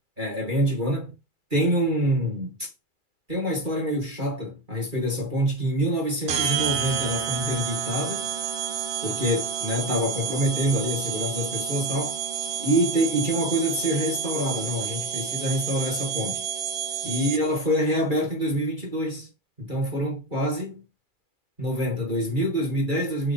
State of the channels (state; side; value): late; left; 2.4 ms